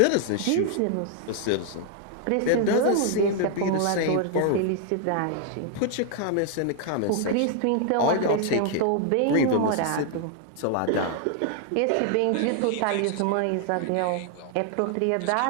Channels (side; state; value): both; different; correlation 0.00